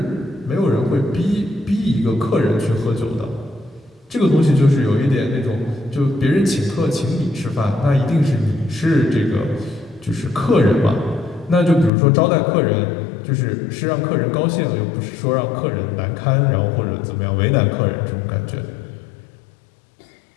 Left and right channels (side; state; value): right; drops out; at 11.9 s